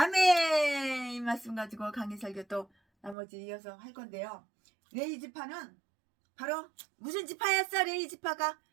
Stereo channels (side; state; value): left; drops out; at 3.2 s